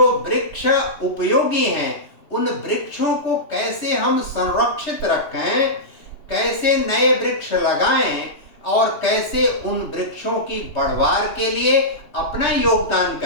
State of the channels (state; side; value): late; right; 3.3 ms